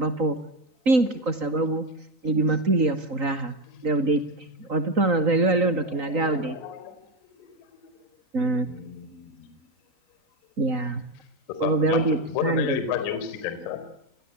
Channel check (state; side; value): late; left; 3.9 ms